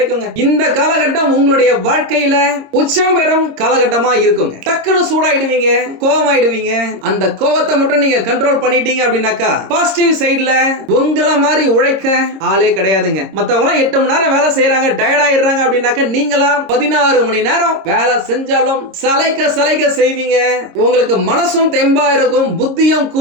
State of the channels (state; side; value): late; left; 26 ms